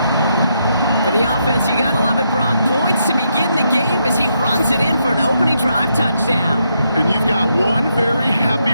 For the offense, you gotta love it, Brock. Points to begin the game as he runs it in for an opening drive touchdown. And you've got one very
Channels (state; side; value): inverted; both; correlation -0.79